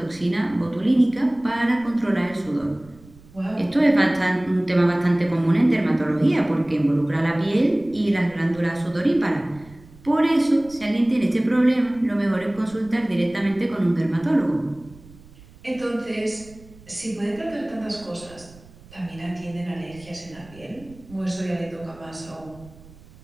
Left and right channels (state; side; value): noise; right; rumble, 23 dB below the sound